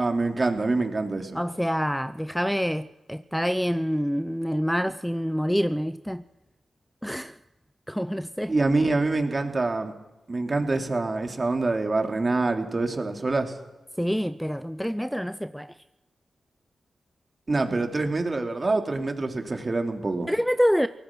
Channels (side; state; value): both; normal; correlation 0.98